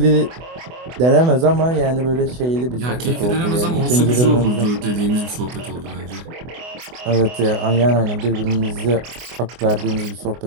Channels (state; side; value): late; left; 24 ms